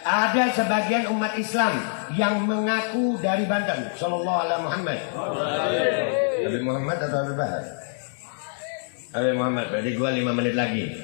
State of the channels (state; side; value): silent; right; digital silence